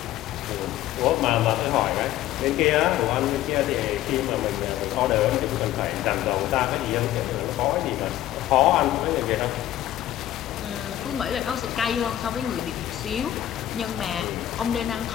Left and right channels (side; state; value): right; quieter; 13.2 dB